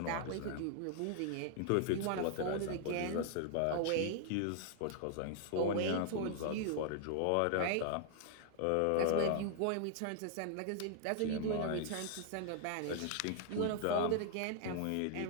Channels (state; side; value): different; both; correlation 0.00